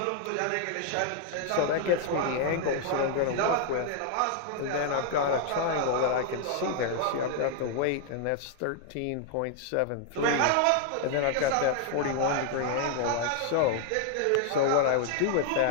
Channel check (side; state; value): both; different; correlation 0.00